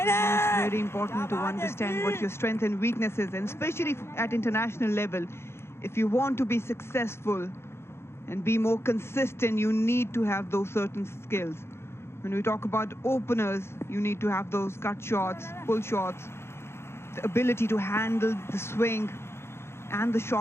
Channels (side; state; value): right; late; 0.12 ms